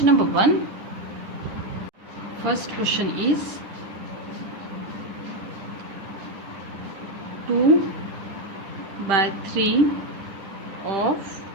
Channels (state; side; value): late; left; 10 ms